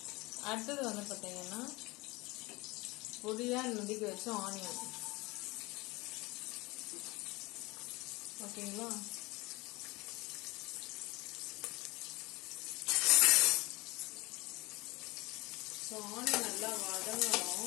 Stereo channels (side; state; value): right; quieter; 23.1 dB